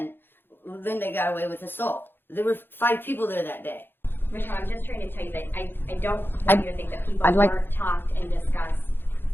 Linda got away with assault. There were 5 people there that day. Michelle, I'm just trying to tell you that I don't want you to think that people weren't talked and discussed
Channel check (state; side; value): late; right; 0.10 ms